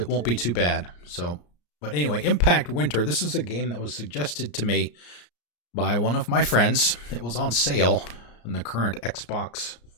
too bad. So, but anyway, Impact Winter. This is a game that was suggested to me by one of my friends. It was on sale in the current Xbox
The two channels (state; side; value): late; right; 34 ms